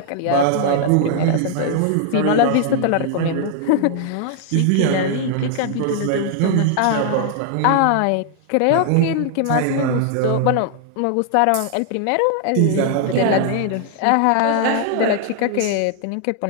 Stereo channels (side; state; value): both; different; correlation 0.00